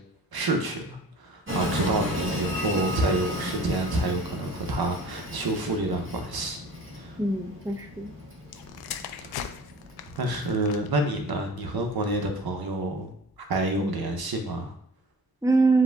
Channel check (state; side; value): normal; both; correlation 0.44